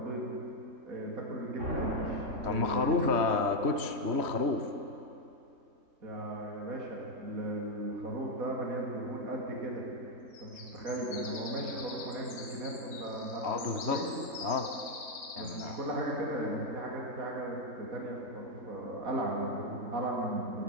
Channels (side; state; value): left; late; 3.2 ms